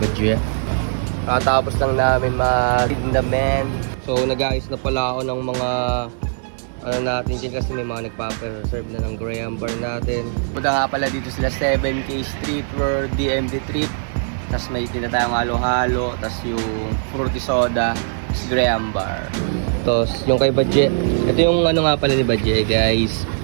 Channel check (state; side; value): silent; left; digital silence